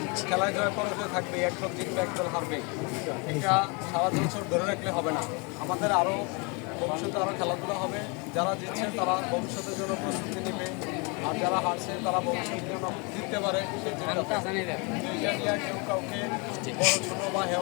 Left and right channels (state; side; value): quieter; right; 31.2 dB